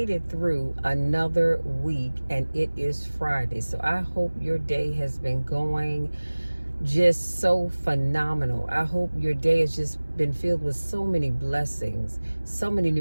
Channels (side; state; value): both; inverted; correlation -1.00